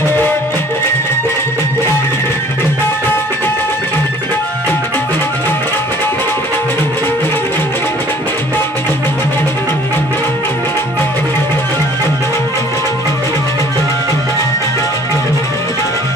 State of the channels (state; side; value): normal; both; correlation 0.53